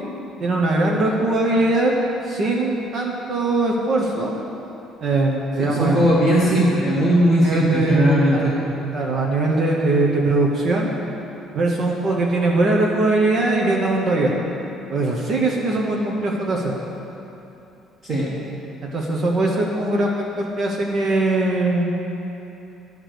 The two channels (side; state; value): both; normal; correlation 0.66